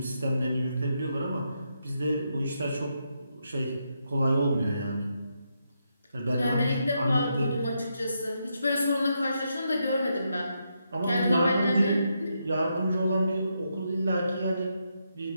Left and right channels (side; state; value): both; inverted; correlation -0.81